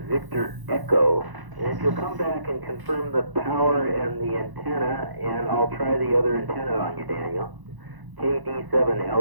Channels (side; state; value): left; late; 1.0 ms